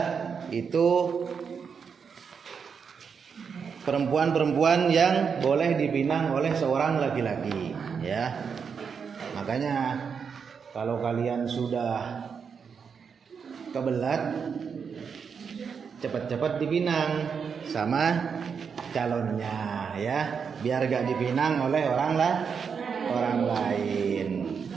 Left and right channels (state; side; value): quieter; left; 6.3 dB